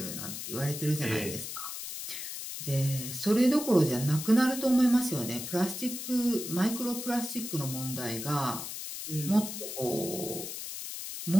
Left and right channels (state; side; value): noise; left; hiss, 7 dB below the sound